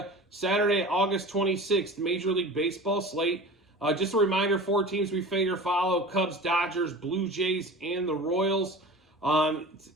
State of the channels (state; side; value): normal; both; correlation 0.36